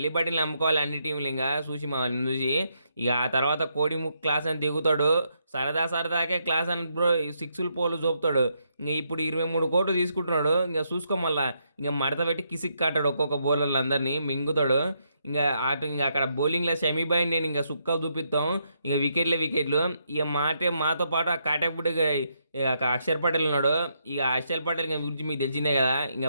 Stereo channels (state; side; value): inverted; both; correlation -0.78